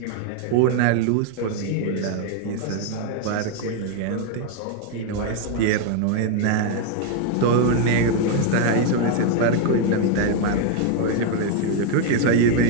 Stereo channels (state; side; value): different; both; correlation 0.00